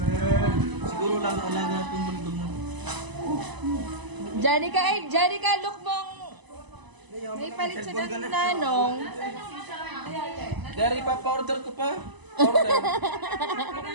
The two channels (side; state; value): left; late; 1.0 ms